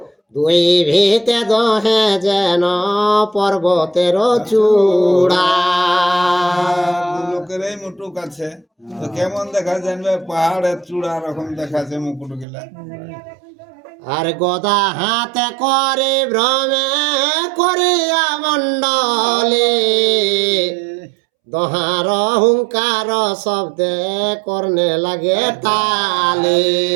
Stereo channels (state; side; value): drops out; left; at 12.5 s